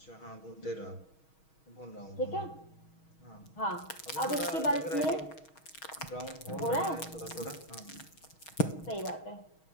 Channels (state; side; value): late; right; 6.3 ms